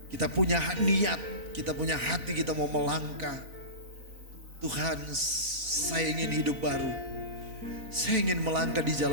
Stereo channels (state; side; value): late; left; 4.0 ms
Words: Kita punya niat, kita punya hati, kita mau melangkah. Tuhan, saya ingin hidup baru. Saya ingin melangkah di